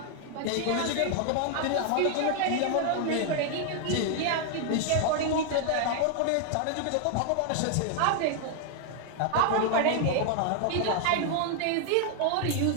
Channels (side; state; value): both; different; correlation 0.00